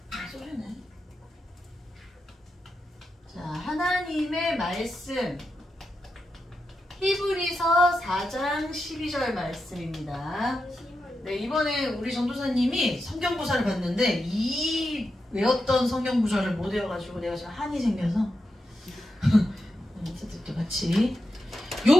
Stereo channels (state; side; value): normal; both; correlation 0.87